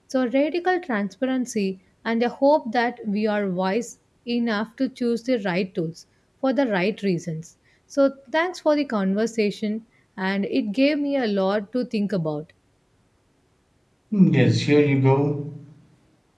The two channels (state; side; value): identical; both; correlation 1.00